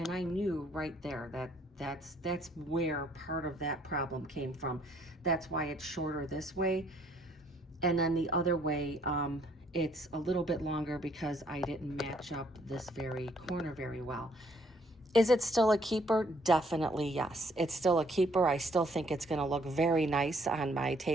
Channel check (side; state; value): both; normal; correlation 0.65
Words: I knew right there that that's where part of that problem came from. That's why it's shorter this way. And then the other way, it's a little bit longer because I didn't match up this very corner very well. Is it still a keeper? Definitely yes. It's still a keeper. I still think it's going to look very nice on my